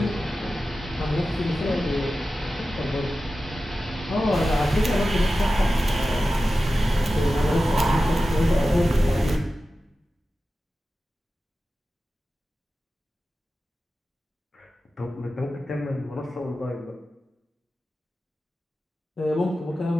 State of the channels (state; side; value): normal; both; correlation 0.93